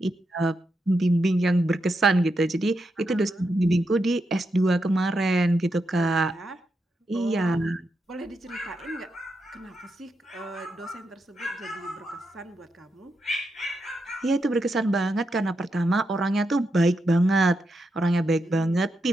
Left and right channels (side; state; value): both; normal; correlation 0.84